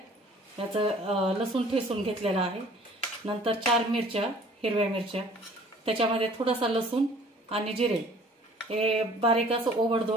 याचं लसूण ठेचून घेतलेला आहे। नंतर 4 मिरच्या, हिरव्या मिरच्या, त्याच्यामध्ये थोडासा लसूण आणि जिरे हे बारीक असं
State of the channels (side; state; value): both; normal; correlation 0.53